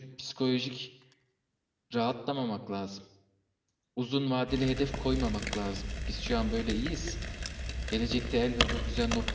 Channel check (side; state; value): both; identical; correlation 1.00